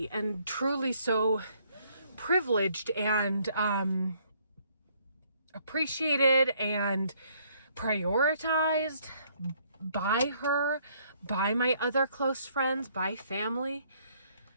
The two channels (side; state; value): both; inverted; correlation -0.66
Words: and truly so privileged and appreciated and prioritized by her, by my other close friends, by family.